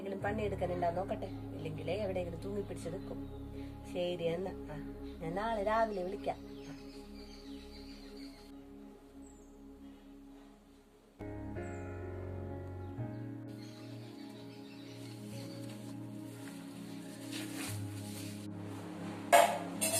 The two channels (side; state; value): both; identical; correlation 1.00